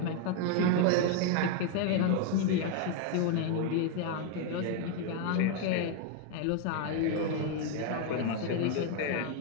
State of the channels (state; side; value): different; both; correlation 0.01